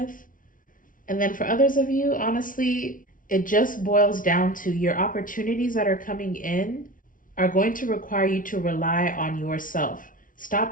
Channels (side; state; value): right; late; 0.39 ms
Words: And then for others of you, honestly, it just boils down to your opportunities that are coming in are going to require you to rely on yourself.